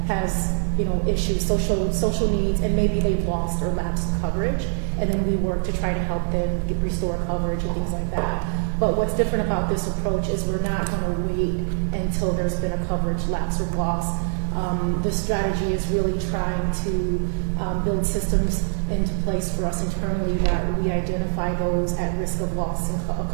has issues, social needs, and maybe they've lost or lapsed coverage, and then we work to try to help them restore coverage and things like that. But what's different about this approach is we're not going to wait until there's been a coverage lapse or loss. The strategy is really trying to build systems into place for us internally that we identify those at risk of loss and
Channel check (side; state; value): left; silent; 63 dB below the other